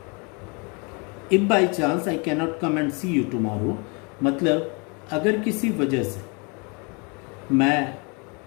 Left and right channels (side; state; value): right; quieter; 32.1 dB